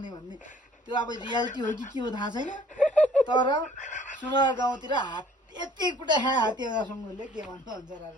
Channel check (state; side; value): normal; both; correlation 0.56